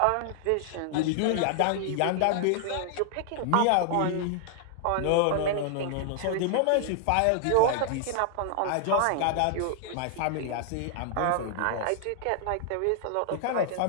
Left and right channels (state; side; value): different; both; correlation 0.00